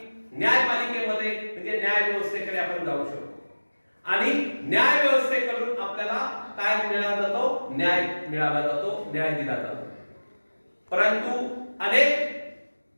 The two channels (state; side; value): inverted; both; correlation -1.00